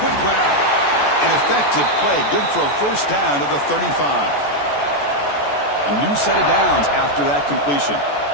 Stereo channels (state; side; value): late; right; 14 ms